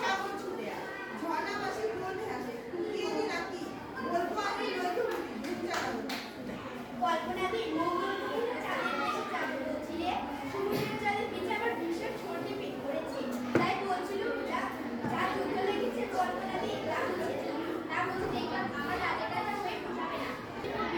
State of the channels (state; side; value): identical; both; correlation 1.00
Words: সাগর ছুটে আয়। ঝর্ণা মাসি বলবে আসে ফুটিয়ে দি নাকি? বলবো আমি নইতে উঠি ঘুম জাগাবো। কল্পনাদি মঙ্গল গ্রহে চাঁদের দেশে জাগ্রত ছিলে, সমুদ্রের জলে ভিজে আবার ভীষণ সর্দি পেট করেছে। তাই বলছিল যা যুদ্ধ লেগেছে কল্পনাদি তা বলছে দেখলাম আমার রাজাটা হয়ে পোষাবে না।